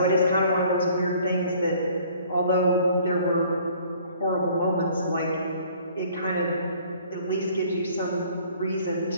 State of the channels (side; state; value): both; inverted; correlation -0.56